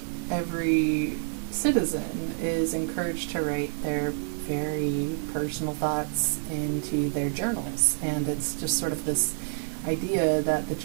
every citizen is encouraged to write their very personal thoughts into their journals. And it's just sort of this idea that the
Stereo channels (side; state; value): left; silent; 59 dB below the other